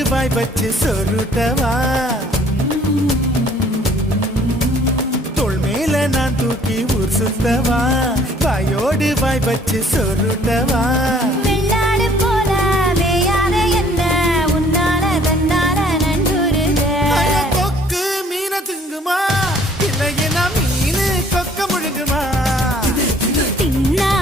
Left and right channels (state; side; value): normal; both; correlation 0.58